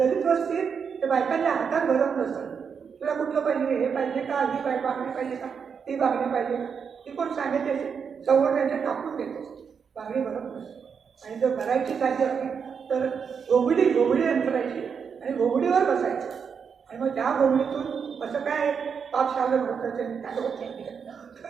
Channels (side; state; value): left; quieter; 6.5 dB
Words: वस्तीत ते बायकांच्या हातात भरत नसतं. तुला कुठलं पाहिजे, हे पाहिजे का, ही बांगडी पाहिजे का, ती बांगडी पाहिजे का, ती कोण सांगितले सवड त्यांच्या कापून देते, बांगडी भरत नसते. आणि जर भरायची साधी असली तर घोगडी अंतरायची आणि घोगडीवर बसायचं. आणि मग त्या घोगडीतून असं काय पाप शालं होतं